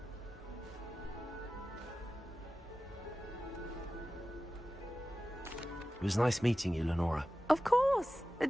It was nice meeting you, Lenora. Of course.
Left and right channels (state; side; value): normal; both; correlation 0.94